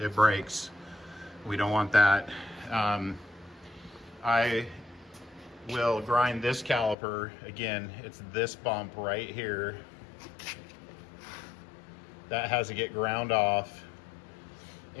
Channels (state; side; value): drops out; right; at 7.0 s